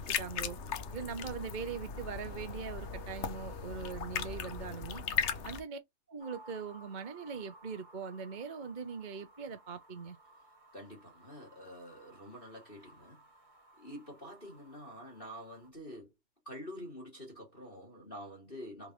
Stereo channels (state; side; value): late; right; 3.2 ms